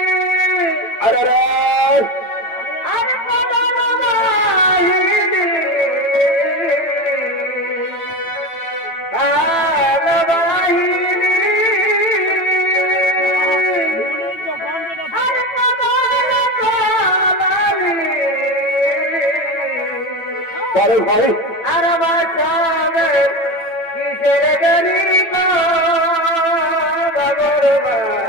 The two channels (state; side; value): late; right; 9.0 ms